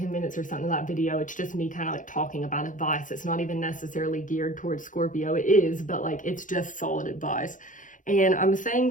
minutes or something of that video, it's just me kind of like talking about advice. It's not even necessarily geared towards Scorpio. It is, but like, it's just solid advice. And I'm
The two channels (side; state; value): right; late; 0.38 ms